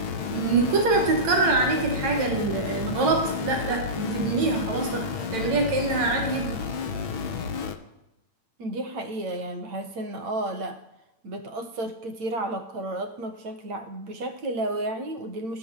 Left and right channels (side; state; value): left; late; 8.9 ms